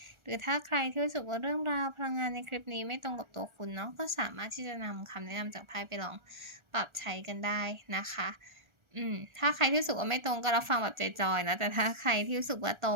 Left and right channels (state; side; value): late; left; 1.4 ms